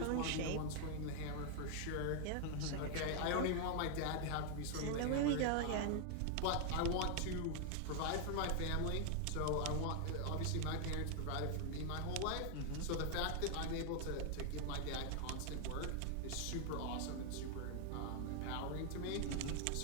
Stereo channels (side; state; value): both; different; correlation 0.00